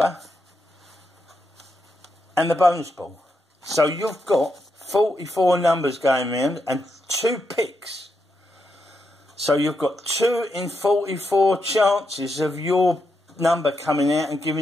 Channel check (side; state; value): both; normal; correlation 0.83